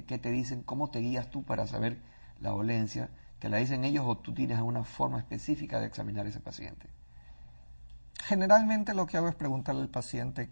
¿Qué te dicen? ¿Cómo te guías tú para saber la dolencia? ¿Te la dicen ellos o tú tienes alguna forma específica de examinar a ese paciente? Generalmente lo que hago es preguntarle al paciente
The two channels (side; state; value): both; inverted; correlation -1.00